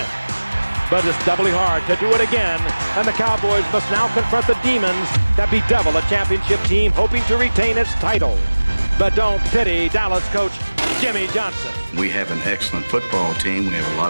But it's doubly hard to do it again, and the Cowboys must now confront the demons that bedevil a championship team hoping to retain its title. But don't pity Dallas coach Jimmy Johnson. We have an excellent football team. We have a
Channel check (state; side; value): inverted; both; correlation -1.00